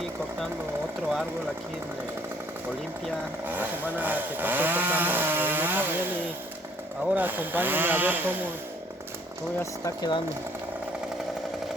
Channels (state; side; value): normal; both; correlation 0.61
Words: cortando otro árbol aquí en Olimpia. La semana que pasó cortamos uno también y ahora acompáñenme a ver cómo ya se está quedando.